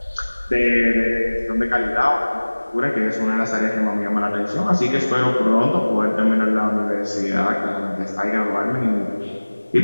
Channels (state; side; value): inverted; both; correlation -1.00